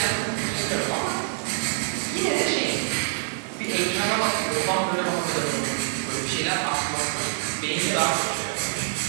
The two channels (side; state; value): left; silent; 61 dB below the other